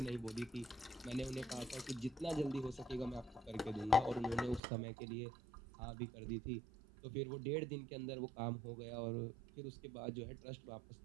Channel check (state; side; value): drops out; left; at 4.6 s